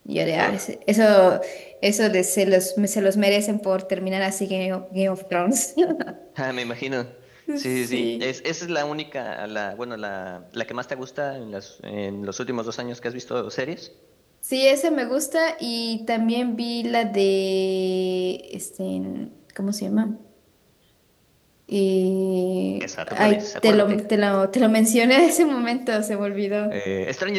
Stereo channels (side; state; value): both; identical; correlation 1.00